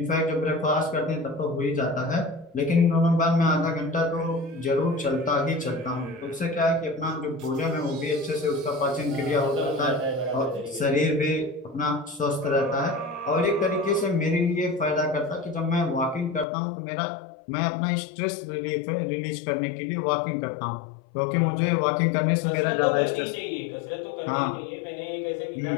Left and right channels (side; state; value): right; drops out; at 16.4 s